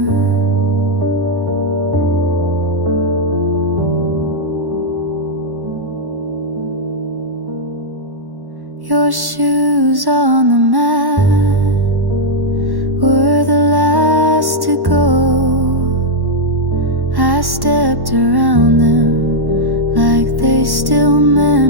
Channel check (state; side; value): late; left; 1.1 ms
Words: Your shoes on the mat were the last to go. I stepped around them like they still